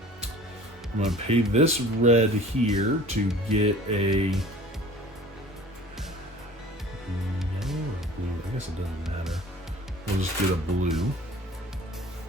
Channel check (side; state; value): both; normal; correlation 0.46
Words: I'm going to pay this red here to get a yellow or blue. I guess it doesn't matter. We'll just get a blue.